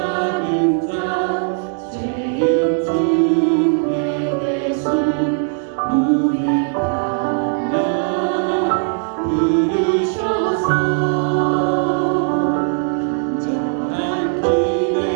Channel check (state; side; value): silent; left; 55 dB below the other